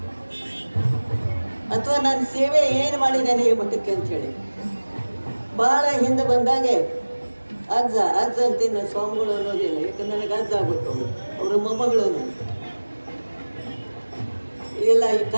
ಅಥವಾ ನಾನು ಸೇವೆ ಏನು ಮಾಡಿದ್ದೇನೆ ಈ ಮಠಕ್ಕೆ ಅಂಥೇಳಿ. ಭಾಳ ಹಿಂದೆ ಬಂದಾಗೆ ಅಜ್ಜ ಅಂತೀನಿ ನಾನು, ಸ್ವಾಮಿಗಳು ಅನ್ನೋದಿಲ್ಲ. ಯಾಕಂದ್ರೆ ನನಗೆ ಅಜ್ಜ ಆಗ್ಬೇಕು. ಅವರ ಮೊಮ್ಮಗಳನ್ನು ಇಲ್ಲ, ಈ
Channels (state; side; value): inverted; both; correlation -1.00